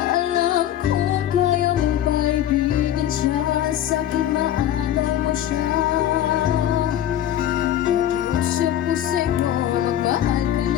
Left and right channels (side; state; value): right; quieter; 11.3 dB